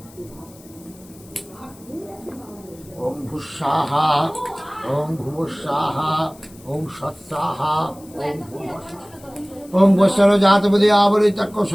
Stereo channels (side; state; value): left; noise; hiss, 24 dB below the sound